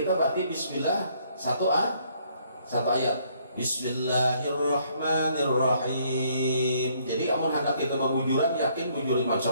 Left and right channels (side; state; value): both; inverted; correlation -0.66